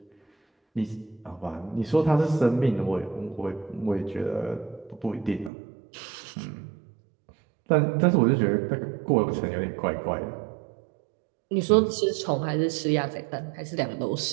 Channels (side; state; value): left; drops out; at 5.5 s